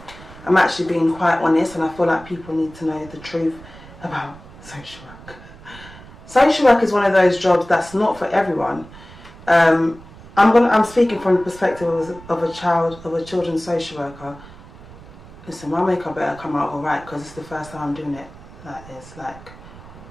I'm actually being quite honest, and I feel like people need to know the truth about social work. Social work is one of those jobs that's not for everyone. I'm speaking from the perspective of a children's social worker. Listen, my makeup better come out alright, because it's the first time I'm doing it like this, like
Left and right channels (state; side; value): noise; right; rumble, 19 dB below the sound